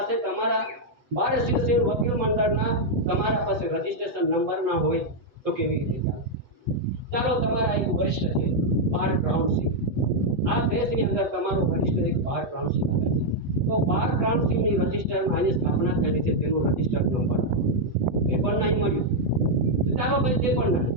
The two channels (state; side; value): late; left; 8.1 ms